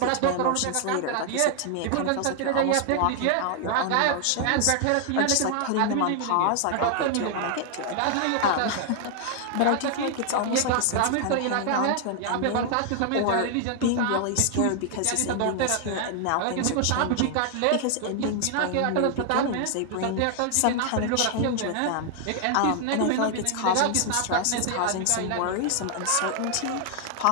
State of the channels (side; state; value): both; different; correlation 0.00